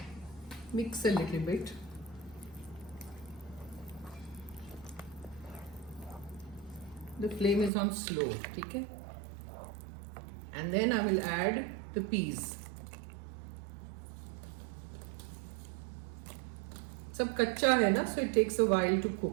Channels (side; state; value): left; drops out; at 7.7 s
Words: Mix a little bit. The flame is on slow, okay? And then I will add the peas. सब कच्चा है ना, so it takes a while to